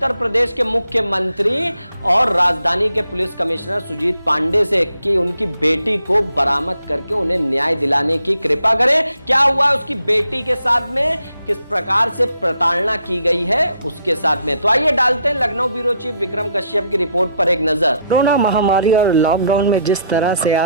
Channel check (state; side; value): inverted; both; correlation -0.72